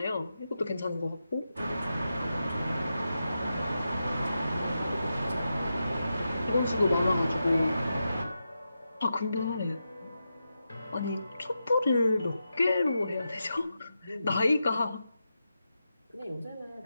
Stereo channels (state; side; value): inverted; both; correlation -0.88